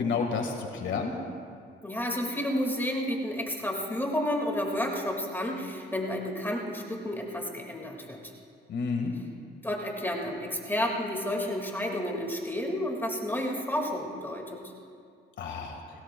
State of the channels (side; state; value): both; normal; correlation 0.60